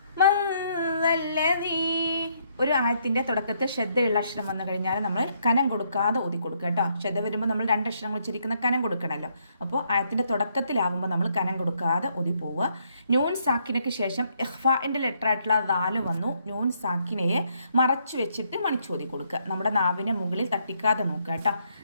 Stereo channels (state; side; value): inverted; both; correlation -0.72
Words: من ذا الذي ഒരു ആയത്തിൻ്റെ തുടക്കത്തിൽ ശ്രദ്ധയുള്ള അക്ഷരം വന്നു കഴിഞ്ഞാൽ നമ്മൾ കനം കൊടുക്കാതെ ഓതി കൊടുക്കുക കേട്ടോ. ശ്രദ്ധ വരുമ്പോൾ നമ്മൾ രണ്ട് അക്ഷരങ്ങൾ ഉച്ചരിക്കുന്ന കനം കൊടുക്കണമല്ലോ. അപ്പോൾ ആയത്തിൻ്റെ തുടക്കത്തിലാവുമ്പോൾ നമ്മൾ കനം കൊടുക്കാതെ ഓതി പോവുക. നൂൻ സാക്കിനയ്ക്ക് ശേഷം ഇഖ്ഫാഇൻ്റെ ലെറ്റർ ആയിട്ടുള്ള ദാല് വന്നു. നൂൻ സാക്കിനയെ മറച്ചു വെച്ചിട്ട് മണിച്ചോതി കൊടുക്കുക. നമ്മുടെ നാവിനെ മുകളിൽ തട്ടിക്കാതെ നോക്കുക കേട്ടോ.